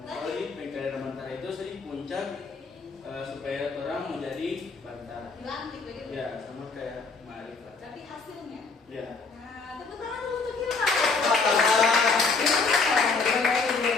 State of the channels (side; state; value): right; quieter; 4.3 dB